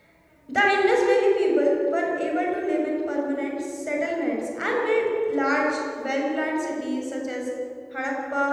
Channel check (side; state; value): both; identical; correlation 1.00